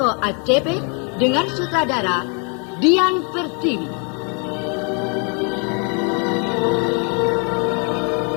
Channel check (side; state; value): right; quieter; 36.9 dB